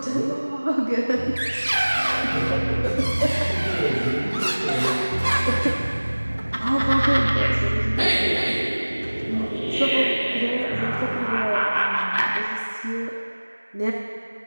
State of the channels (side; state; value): both; inverted; correlation -1.00